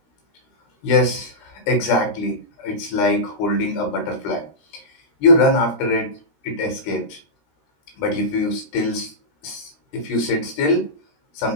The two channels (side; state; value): right; late; 13 ms